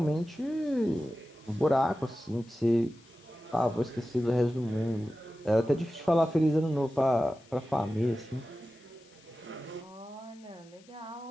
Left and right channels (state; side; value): noise; left; hiss, 28 dB below the sound